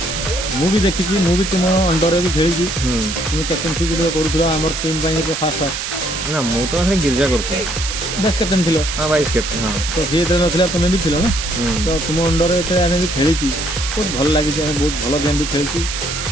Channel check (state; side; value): noise; right; hiss, 4 dB below the sound